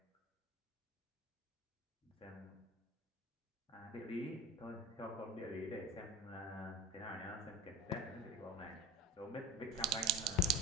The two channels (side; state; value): both; normal; correlation 0.33